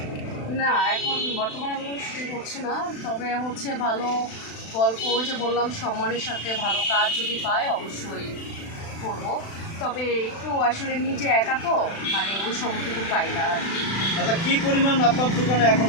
না, এখন বর্তমানে আমি কোনো শুটিং করছি না, তবে হচ্ছে ভালো গল্প, ওই যে বললাম সম্মানের সাথে ভালো কাজ যদি পাই অবশ্যই করব। তবে একটু আসলে নিজে একা তো মানে ওই সময়টুকু পাই না আর কি। আচ্ছা, কী পরিমাণ আপনার দোকানে এখন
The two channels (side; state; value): right; late; 36 ms